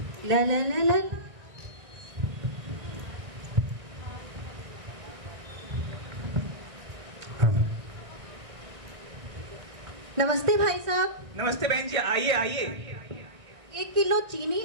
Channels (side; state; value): left; late; 1.7 ms